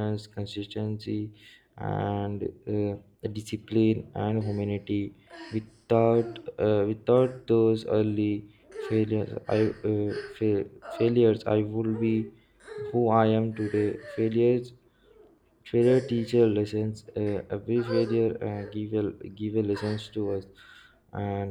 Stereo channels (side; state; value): both; identical; correlation 1.00